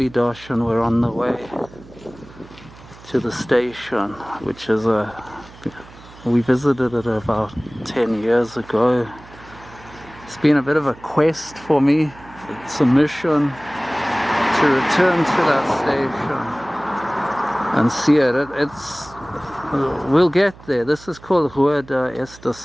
and we're on the way to the station, which is we visited it about 10 years ago. It's been a bit of a quest for me. It's a mission to return to that station and see it. We'll get there. This is called Rua da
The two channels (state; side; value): noise; right; hum, 21 dB below the sound